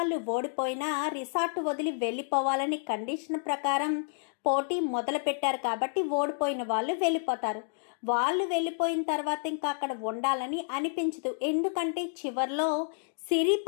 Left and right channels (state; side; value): silent; right; digital silence